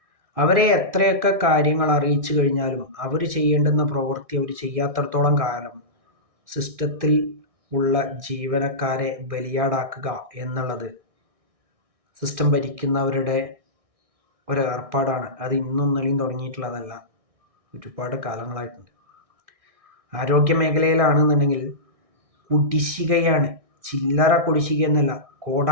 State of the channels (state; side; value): late; left; 1.6 ms